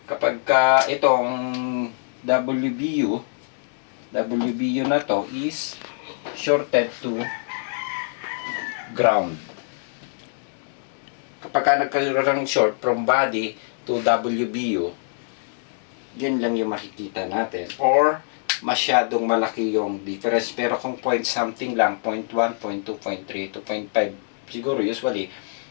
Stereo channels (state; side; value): silent; right; 62 dB below the other